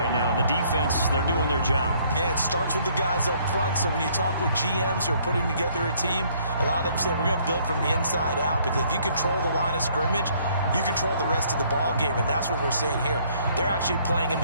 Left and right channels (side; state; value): both; inverted; correlation -0.63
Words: now. And the defense, they're doing their job. Yeah, it starts with the guys up front. So when you talk with GMs who are putting together a team, a lot of them say we're going to build from the inside out, because if you control the line of scrimmage, you control the rest of the ball game, and that's what we're seeing here. They're actually playing in